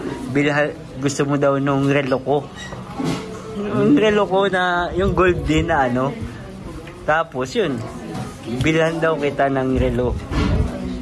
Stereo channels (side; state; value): both; identical; correlation 1.00